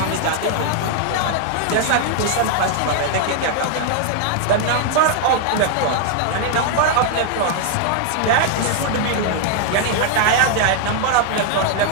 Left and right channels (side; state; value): both; different; correlation 0.00